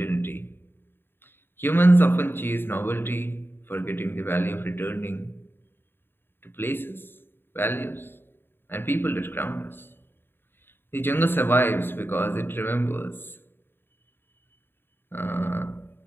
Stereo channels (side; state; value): right; late; 0.10 ms